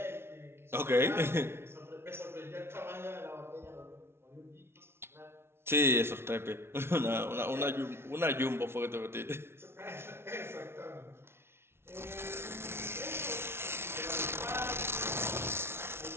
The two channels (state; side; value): late; left; 0.12 ms